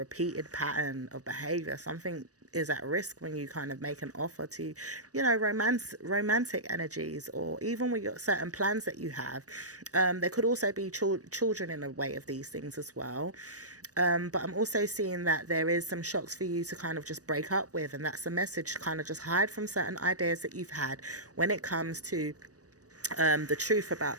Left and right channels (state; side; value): late; left; 0.67 ms